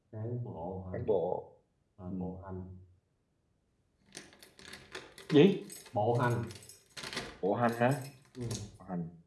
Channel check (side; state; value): both; identical; correlation 1.00